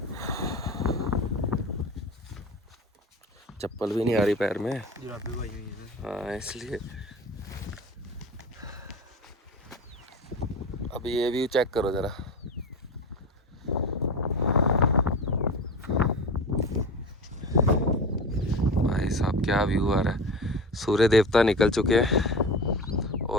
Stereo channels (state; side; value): normal; both; correlation 0.30